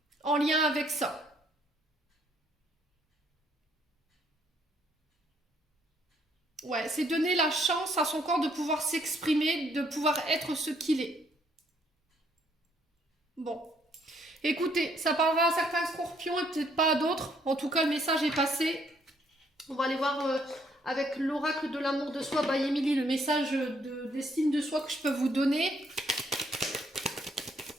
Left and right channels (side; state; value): both; normal; correlation 0.68